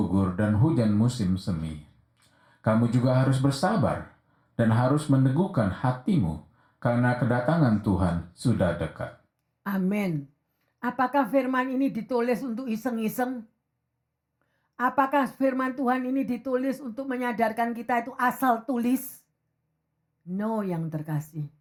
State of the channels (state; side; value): identical; both; correlation 1.00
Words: dan hujan musim semi. Kamu juga harus bersabar dan harus meneguhkan hatimu, karena kedatangan Tuhan sudah dekat. Amin. Apakah firman ini ditulis untuk iseng-iseng? Apakah firman Tuhan ini ditulis untuk menyadarkan kita itu asal tulis? No, yang terkasih.